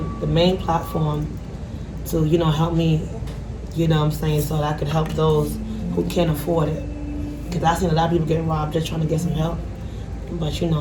main platform to, help me, so that I could help those who can't afford it. Because I've seen a lot of people get robbed just trying to get some help. But,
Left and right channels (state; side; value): identical; both; correlation 1.00